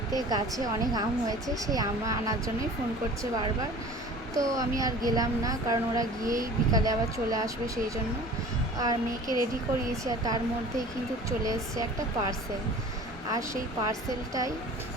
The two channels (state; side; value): normal; both; correlation 0.43